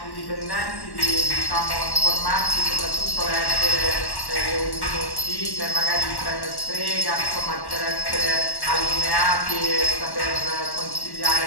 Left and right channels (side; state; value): right; late; 1.1 ms